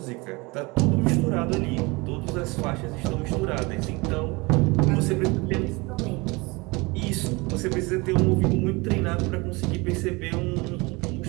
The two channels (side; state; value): left; quieter; 25.4 dB